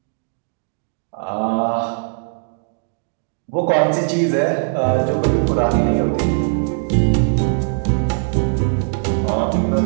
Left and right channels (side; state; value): left; silent; digital silence